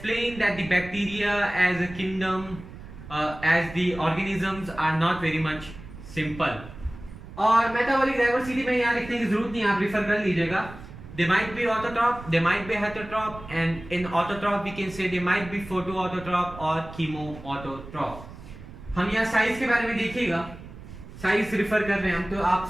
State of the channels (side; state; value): right; noise; rumble, 15 dB below the sound